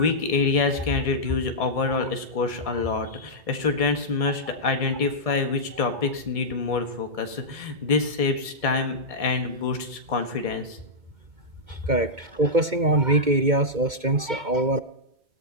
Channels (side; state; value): left; late; 1.7 ms